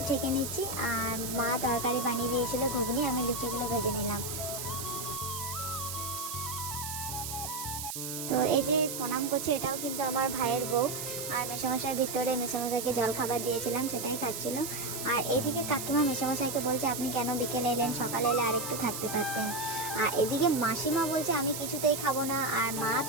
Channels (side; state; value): right; noise; hiss, 6 dB below the sound